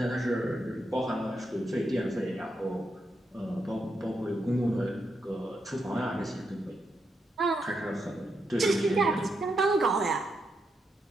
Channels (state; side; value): normal; both; correlation 0.83